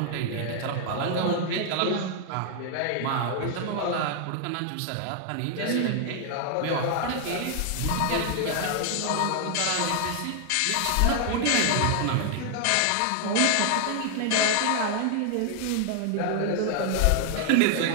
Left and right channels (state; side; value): different; both; correlation 0.00